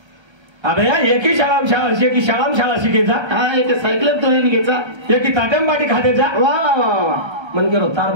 अबे यार एकी शाळा शिकायचा हा एक सायकल तो येईन घ्यायचा एकी ताटम बाटी खाद्याचा वा वा वा वा मन गेलो तार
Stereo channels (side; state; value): left; late; 1.3 ms